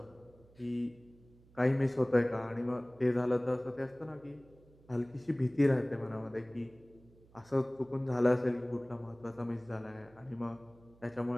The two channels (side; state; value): right; noise; hum, 27 dB below the sound